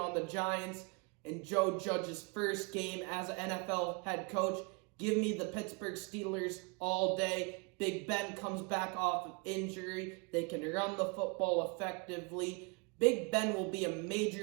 the Giants in Joe Judge's first game as an NFL head coach. Give me the Pittsburgh Steelers all day. Big Ben comes back off of injury. They can run the football effectively. Big Ben will be a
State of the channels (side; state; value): left; quieter; 31.7 dB